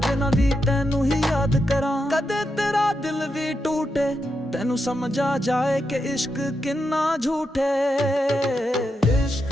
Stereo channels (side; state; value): both; normal; correlation 0.85